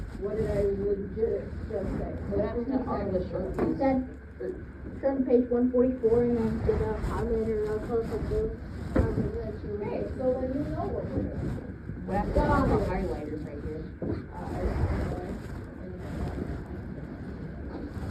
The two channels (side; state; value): both; identical; correlation 1.00